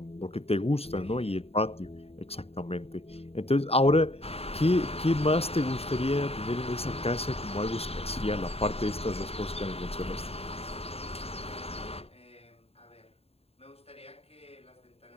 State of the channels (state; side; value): late; right; 0.29 ms